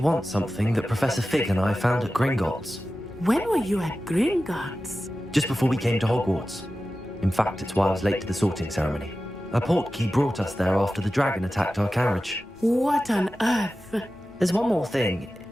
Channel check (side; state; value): both; normal; correlation 0.94